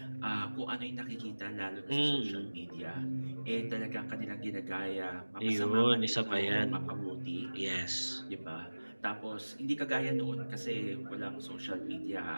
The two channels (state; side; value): inverted; both; correlation -1.00